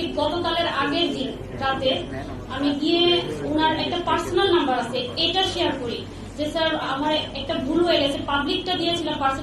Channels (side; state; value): both; identical; correlation 1.00